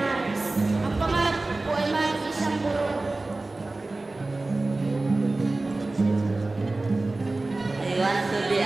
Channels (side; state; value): left; quieter; 3.1 dB